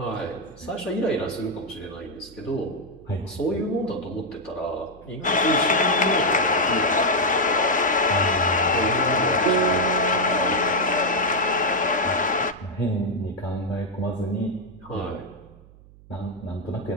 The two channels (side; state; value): right; noise; hum, 23 dB below the sound